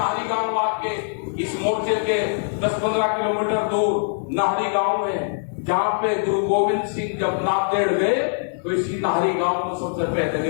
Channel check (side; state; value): right; silent; digital silence